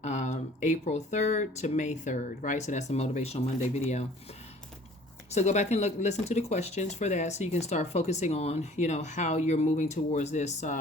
April 3rd to May 3rd, right? So that's the Motivational Monday video. So go back and listen to the questions for that, so you can start focusing on, how you're moving towards this,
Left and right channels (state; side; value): normal; both; correlation 0.51